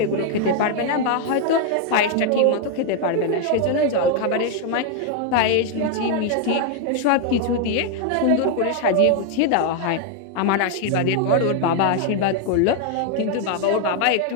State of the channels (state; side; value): different; both; correlation 0.00